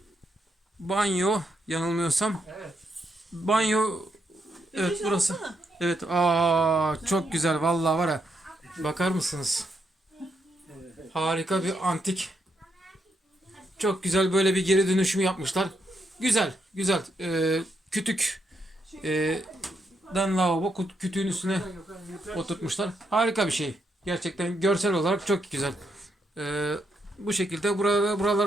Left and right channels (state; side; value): normal; both; correlation 0.79